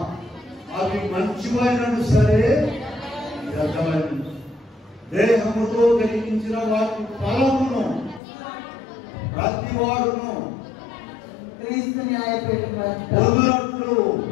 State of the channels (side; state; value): right; drops out; at 8.2 s